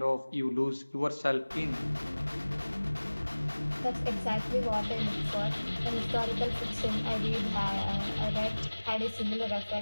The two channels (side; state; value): both; inverted; correlation -1.00